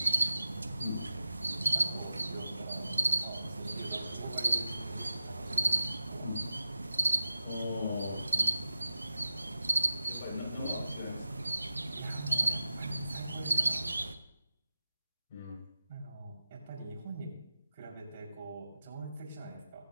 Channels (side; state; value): both; inverted; correlation -0.94